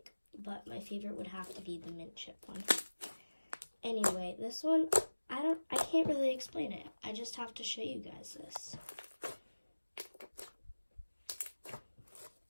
But my favorite would have to be the mint chip one. Anyway, this one, I can't really explain it. I just have to show you guys this.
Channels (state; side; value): inverted; both; correlation -1.00